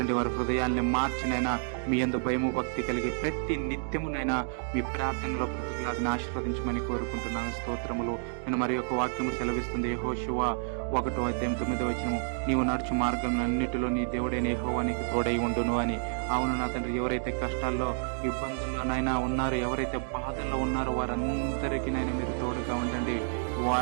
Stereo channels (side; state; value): left; silent; digital silence